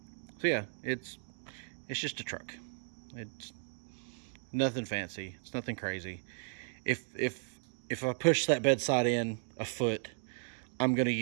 yeah, it's just a truck. It's nothing fancy. It's nothing crazy. If I push that bedside in a foot, I'm gonna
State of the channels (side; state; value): left; silent; 54 dB below the other